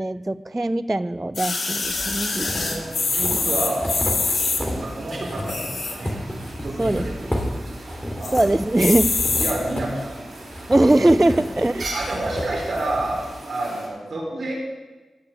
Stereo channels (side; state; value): both; normal; correlation 0.94